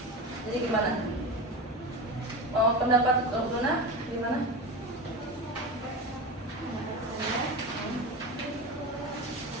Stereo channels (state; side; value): normal; both; correlation 0.24